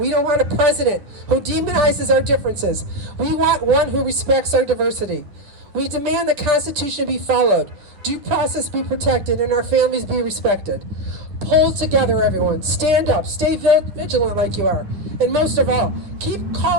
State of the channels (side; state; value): left; late; 9.8 ms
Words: don't want a president who demonizes our differences. We want one who respects our diversity. We demand the Constitution be followed, due process be protected, and our families be respected. Pull together, everyone. Stand up. Stay vigilant like you are. And most of all, keep